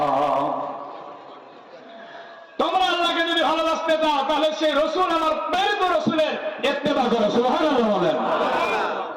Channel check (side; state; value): both; identical; correlation 1.00